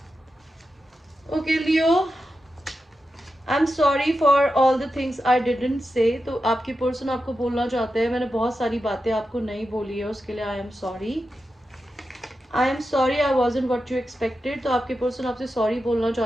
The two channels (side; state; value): both; normal; correlation 0.90